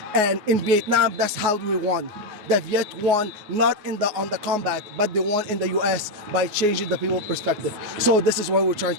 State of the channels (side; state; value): left; late; 9.5 ms